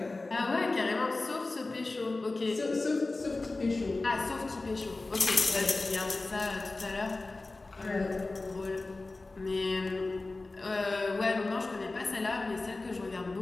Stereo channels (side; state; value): right; quieter; 3.3 dB